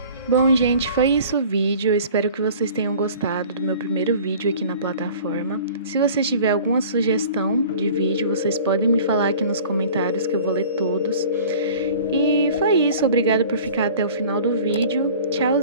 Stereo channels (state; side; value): inverted; both; correlation -0.45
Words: Bom, gente, foi isso o vídeo. Eu espero que vocês tenham gostado do meu primeiro vídeo aqui na plataforma. Se você tiver alguma sugestão de vídeo, vocês podem me falar aqui nos comentários que eu vou ler todos. E foi isso. Obrigada por ficar até o final do vídeo.